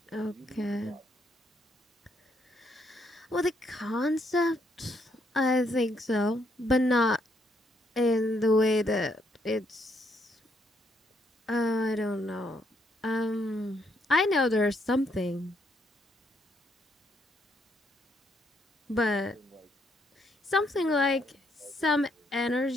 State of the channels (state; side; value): normal; both; correlation 0.73